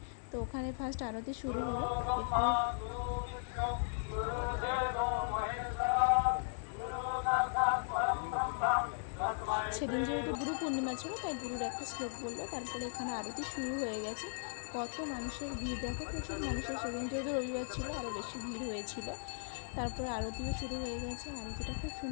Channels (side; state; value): right; silent; 53 dB below the other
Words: তো ওখানে ফার্স্ট আরতি শুরু হলো। এরপর সেদিন যেহেতু গুরু পূর্ণিমা ছিল, তাই গুরুর একটা শ্লোক বললো। তারপরে এখানে আরতি শুরু হয়ে গেছে। কত মানুষের ভিড় দেখো, প্রচুর মানুষের। সেদিন যেহেতু রবিবার ছিল, আরও বেশি ভিড় হয়েছিল। তারপরে আরতিও শুরু হয়ে গেছে। আরতিটা খুব